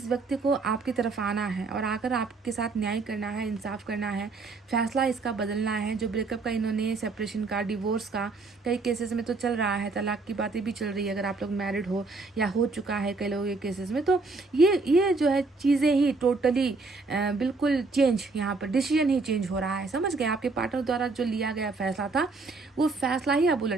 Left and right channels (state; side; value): quieter; left; 3.8 dB